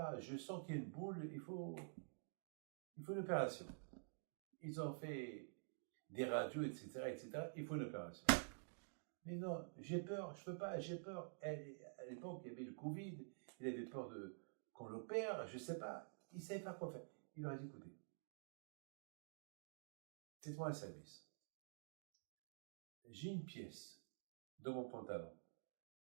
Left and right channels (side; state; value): left; silent; digital silence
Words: je sens qu'il y a une boule, il faut une opération. Ils ont fait des radios, etc. Il faut une opération. Mais non, j'ai peur, je peux pas, j'ai peur. À l'époque, il y avait le Covid, il avait peur qu'on l'opère, je sais pas. Il ne savait pas quoi faire. Il leur a dit, écoutez, faites-moi un service. J'ai une pièce dans mon pantalon.